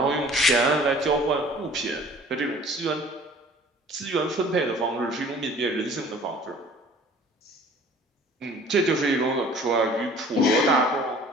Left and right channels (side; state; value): both; normal; correlation 0.50